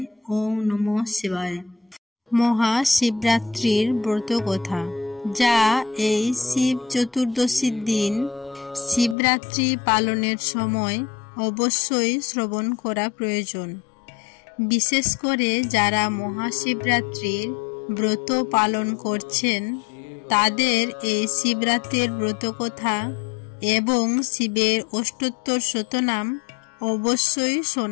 ওং নমঃ শিবায়। মহাশিবরাত্রির ব্রতকথা, যা এই শিব চতুর্দশীর দিন শিবরাত্রি পালনের সময় অবশ্যই শ্রবণ করা প্রয়োজন। বিশেষ করে যারা মহাশিবরাত্রির ব্রত পালন করছেন তাদের এই শিবরাত্রির ব্রতকথা এবং শিবের অষ্টোত্তর শতনাম অবশ্যই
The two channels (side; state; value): right; drops out; at 9.2 s